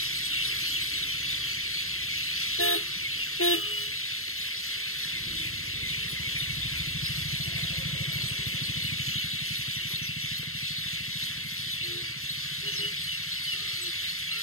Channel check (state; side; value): late; right; 0.62 ms